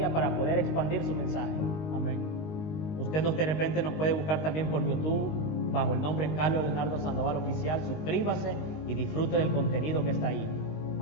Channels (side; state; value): right; late; 19 ms